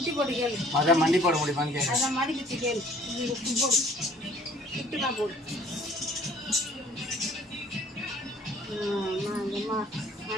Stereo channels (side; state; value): both; normal; correlation 0.55